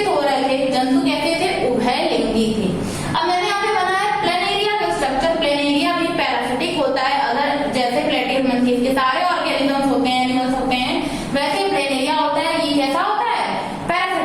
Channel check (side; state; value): both; identical; correlation 1.00